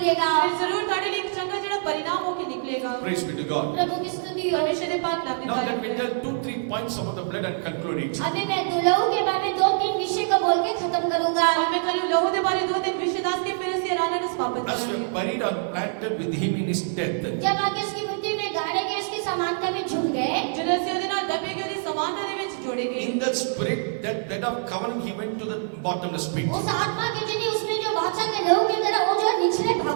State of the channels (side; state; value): left; silent; digital silence